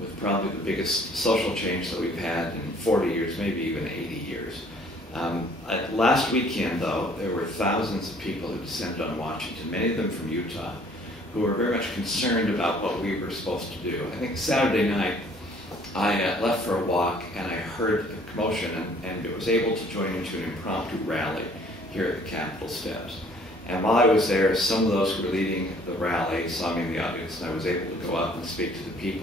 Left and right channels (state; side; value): normal; both; correlation 0.57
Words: with probably the biggest social change that we've had in 40 years, maybe even 80 years. Last weekend, though, there were thousands of people who descended on Washington, many of them from Utah, who were very much concerned about what we were supposed to do. I think Saturday night, I left for a walk and I heard a commotion and was able to join into an impromptu rally here at the Capitol steps. And while I was there, some of those who were leading the rally saw me in the audience, and I was able to go up and speak to the